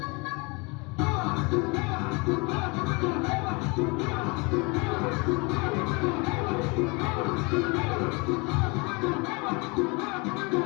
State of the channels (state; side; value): quieter; right; 28.7 dB